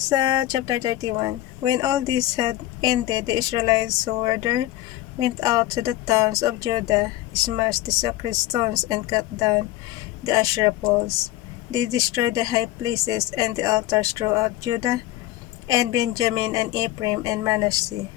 chapter 31, when all this had ended, the Israelites who were there went out to the towns of Judah, smashed the sacred stones, and cut down the Asherah poles. They destroyed the high places and the altars throughout Judah and Benjamin and Ephraim and Manasseh.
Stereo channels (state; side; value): quieter; right; 15.5 dB